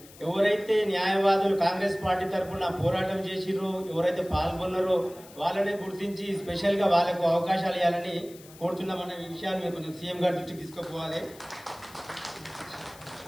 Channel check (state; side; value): noise; left; hiss, 21 dB below the sound